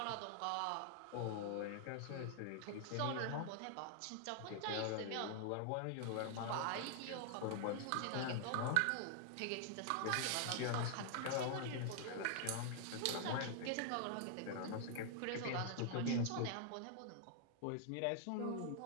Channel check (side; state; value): both; different; correlation 0.00